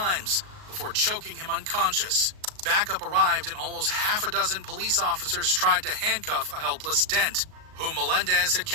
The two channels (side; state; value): left; late; 38 ms